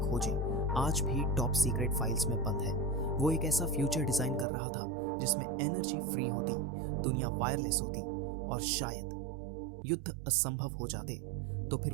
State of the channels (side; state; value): left; drops out; at 4.5 s